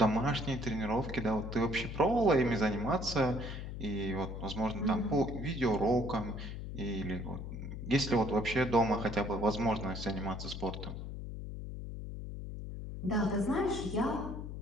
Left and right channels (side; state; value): left; noise; hum, 7 dB below the sound